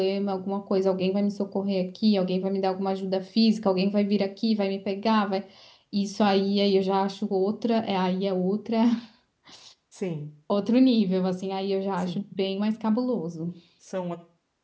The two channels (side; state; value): both; identical; correlation 1.00